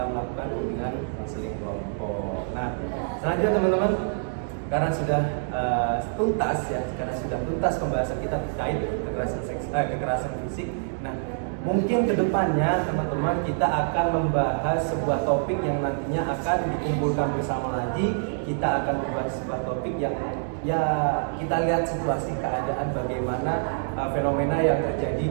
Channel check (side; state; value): left; silent; digital silence